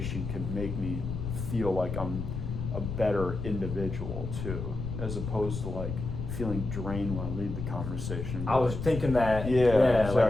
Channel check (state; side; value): noise; left; rumble, 5 dB below the sound